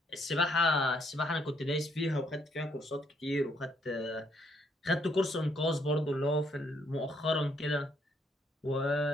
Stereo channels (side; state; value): both; normal; correlation 0.71